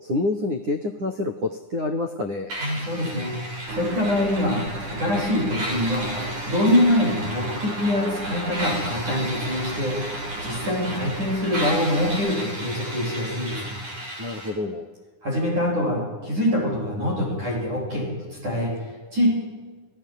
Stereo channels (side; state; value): left; late; 9.9 ms